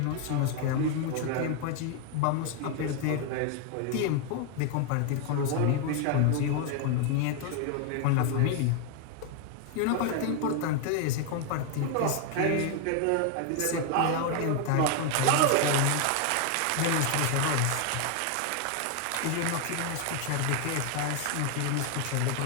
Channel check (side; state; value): both; different; correlation 0.00